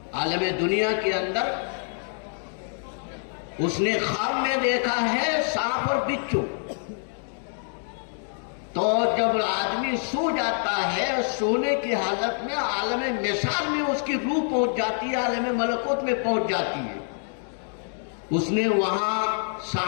عالم دنیا کے اندر اس نے خواب میں دیکھا ہے سانپ اور بچھو. تو جب آدمی سو جاتا ہے، سونے کی حالت میں عالم مثال میں اس کی روح پہنچ جاتی ہے، عالم ملکوت میں پہنچ جاتی ہے. اس نے وہاں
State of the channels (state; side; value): silent; right; 59 dB below the other